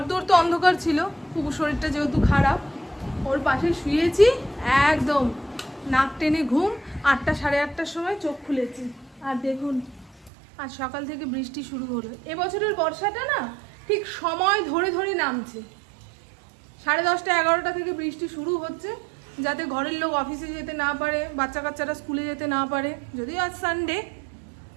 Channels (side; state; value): left; drops out; at 10.3 s